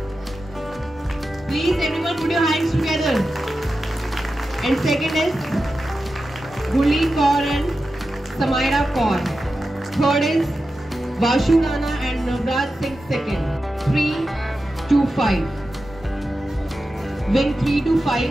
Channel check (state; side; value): normal; both; correlation 0.91